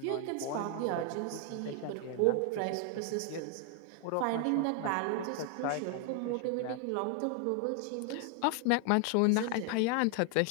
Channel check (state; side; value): different; both; correlation 0.00